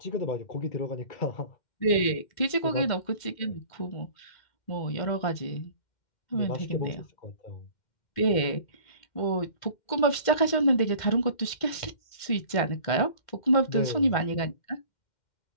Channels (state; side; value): late; right; 2.1 ms